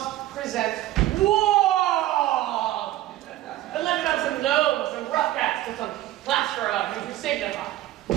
present wall! And let him have some gnomes, some rough cats, and some plaster of him to signify.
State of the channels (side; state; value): left; quieter; 15.0 dB